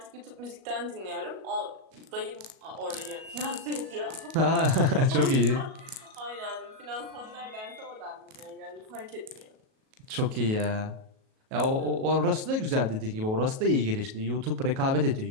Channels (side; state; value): left; late; 37 ms